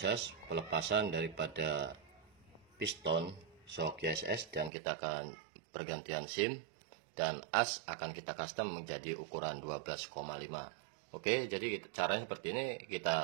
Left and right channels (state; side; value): drops out; left; at 4.7 s